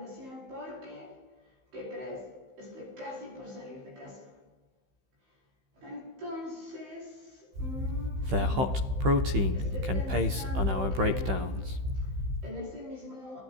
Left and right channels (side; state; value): left; late; 15 ms